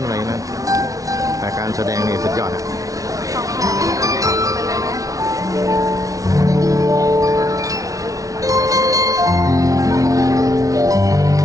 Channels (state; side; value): late; left; 0.17 ms